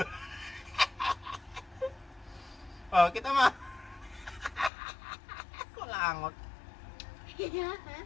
Oh, kita mo. Kulangot.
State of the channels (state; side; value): drops out; right; at 4.7 s